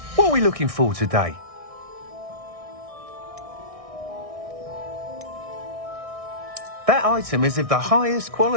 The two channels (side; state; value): left; late; 1.6 ms